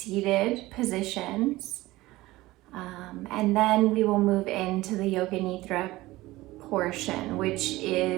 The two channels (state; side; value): quieter; left; 18.5 dB